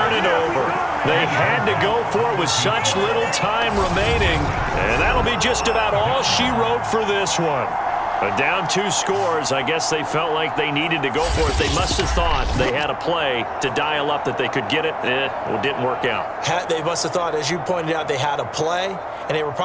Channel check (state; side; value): identical; both; correlation 1.00